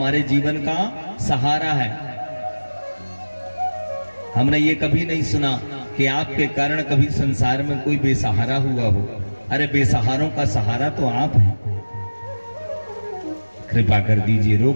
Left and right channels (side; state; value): both; inverted; correlation -1.00